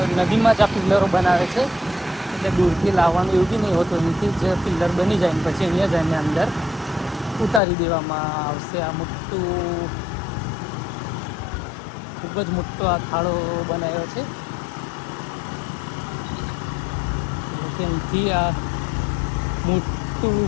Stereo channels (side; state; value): right; drops out; at 7.6 s